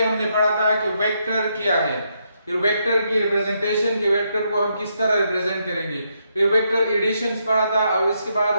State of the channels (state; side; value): inverted; both; correlation -0.78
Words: हमने पढ़ा था कि वेक्टर क्या है, फिर वेक्टर की रिप्रेजेंटेशन के वेक्टर को हम किस तरह रिप्रेजेंट करेंगे, फिर वेक्टर एडिशंस पढ़ा था और इसके बाद